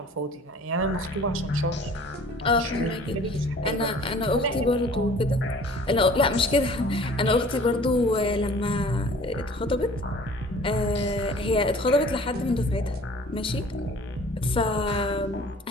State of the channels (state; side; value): normal; both; correlation 0.49